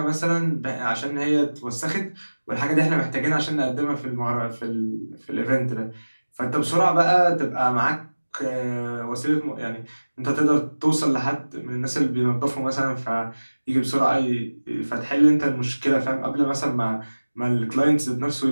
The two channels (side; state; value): both; inverted; correlation -1.00